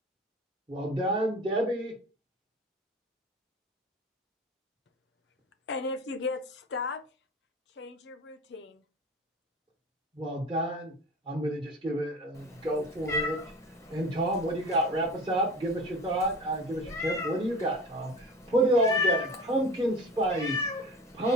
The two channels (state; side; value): normal; both; correlation 0.36